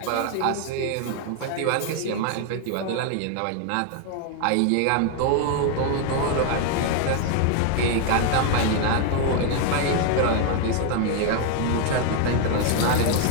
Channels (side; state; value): both; different; correlation 0.00